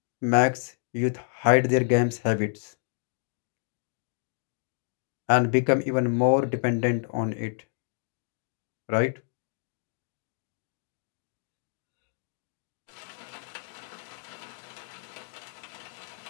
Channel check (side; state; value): right; silent; 58 dB below the other